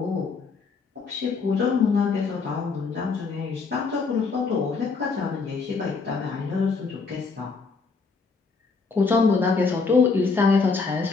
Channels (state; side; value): quieter; right; 4.6 dB